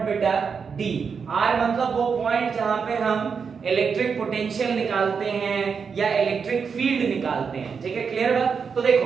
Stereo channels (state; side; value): quieter; left; 5.9 dB